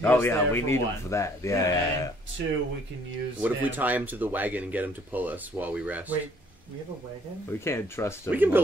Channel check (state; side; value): normal; both; correlation 0.61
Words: Oh us yeah, there we for need one. him for that. Yeah. And two, we can use. What if we him- tie him to the wagon and get him to pull us while we rest? Wait, we have a wagon? We can't trust him. We can